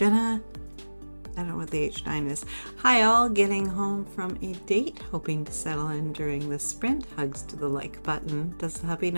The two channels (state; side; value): inverted; both; correlation -1.00